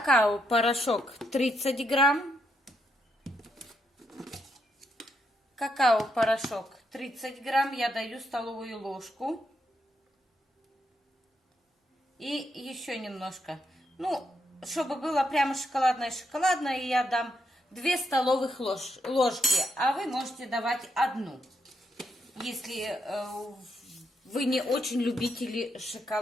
30 грамм. Какао-порошок 30 грамм. Я даю столовую ложку. И еще немножко. Ну, чтобы было прямо шоколадное, я дам 2 столовых ложки. А вы можете давать 1, если вы не очень любители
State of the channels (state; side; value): normal; both; correlation 0.79